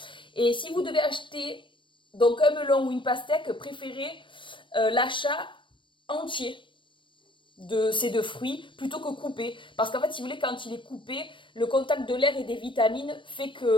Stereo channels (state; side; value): late; right; 0.24 ms